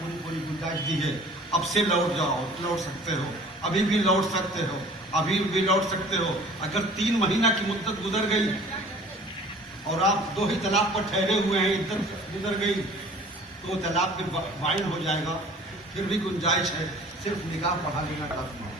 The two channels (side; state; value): both; normal; correlation 0.48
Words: پوری گنجائش دی ہے، اب سے لوٹ جاؤ، لوٹ سکتے ہو، ابھی بھی لوٹ سکتے ہو، ابھی بھی لوٹ سکتے ہو۔ اگر 3 مہینہ کی مدت گزر گئی اور آپ 2 ہی طلاق پر ٹھہرے ہوئے ہیں، عدت گزر گئی تو وہ طلاق پھر فائن ہو جائے گا، پھر بھی گنجائش ہے، صرف نکاح پڑھا لینا کافی ہے۔